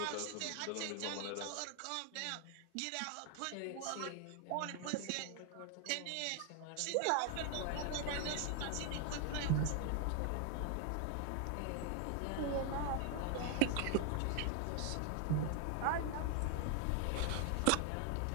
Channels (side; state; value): both; different; correlation 0.00